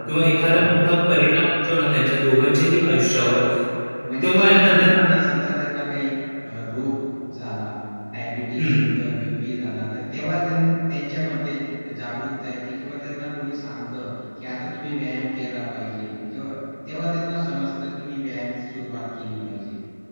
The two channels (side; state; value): both; inverted; correlation -1.00